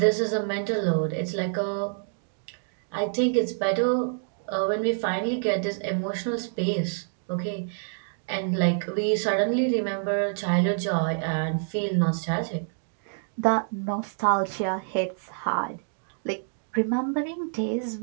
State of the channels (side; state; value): left; silent; digital silence